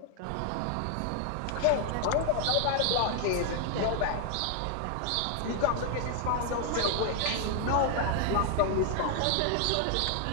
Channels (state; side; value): different; both; correlation 0.00